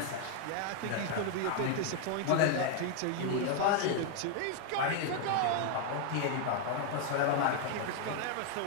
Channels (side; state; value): both; different; correlation 0.00